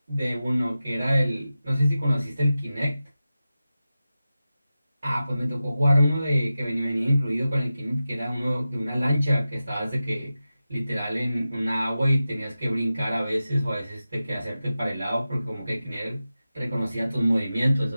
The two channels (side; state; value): both; inverted; correlation -0.93